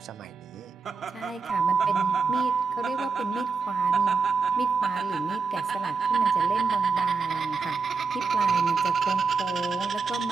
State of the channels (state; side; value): quieter; left; 4.9 dB